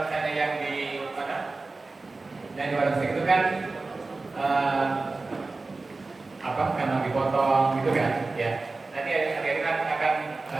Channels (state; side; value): quieter; left; 3.6 dB